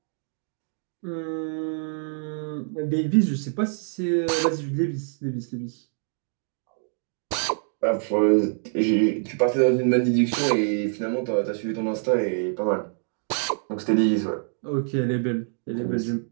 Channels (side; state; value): left; silent; digital silence